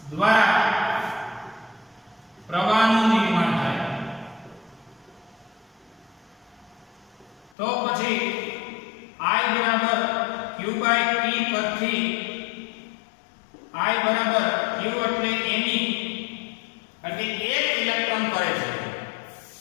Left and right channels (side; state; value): right; drops out; at 7.5 s